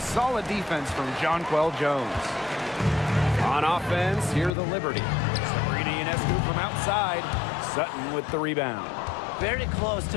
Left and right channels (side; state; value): right; drops out; at 4.5 s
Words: defense from Jonquel Jones. On offense, here the Liberty. Sabrina Ionescu from outside. Sutton with the rebound. Very close